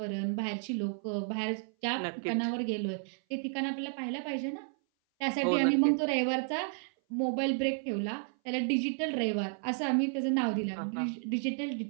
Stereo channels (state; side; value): silent; left; 56 dB below the other